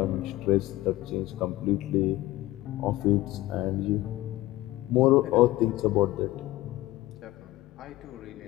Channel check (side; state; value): right; quieter; 17.5 dB